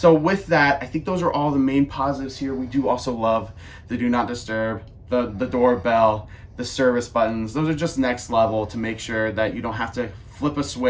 with that, I think those are all the main positives here. We do also love the do not disturb, the doorbell, the service buttons. Those are just next level to make sure that you don't have to flip a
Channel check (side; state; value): both; identical; correlation 1.00